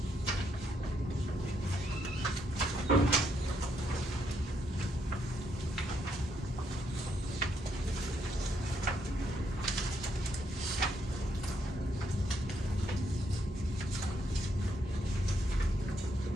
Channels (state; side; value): normal; both; correlation 0.76